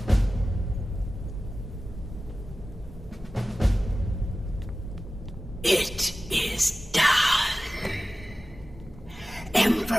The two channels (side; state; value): both; normal; correlation 0.96